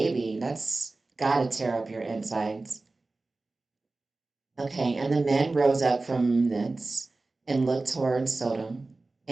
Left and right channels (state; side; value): quieter; left; 3.4 dB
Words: That's gotta tear up your insides. Okay, and the men rose up from thence and looked toward Sodom,